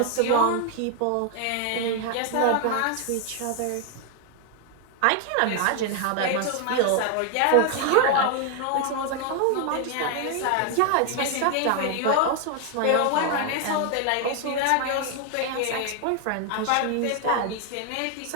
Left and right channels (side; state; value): both; different; correlation 0.00